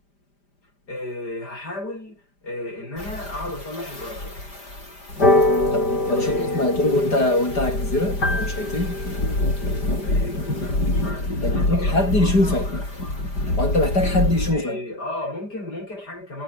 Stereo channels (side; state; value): right; late; 5.0 ms